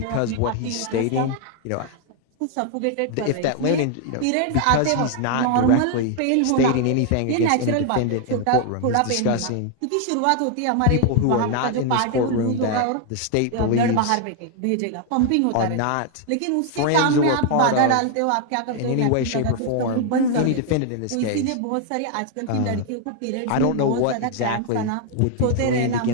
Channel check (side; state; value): both; different; correlation 0.00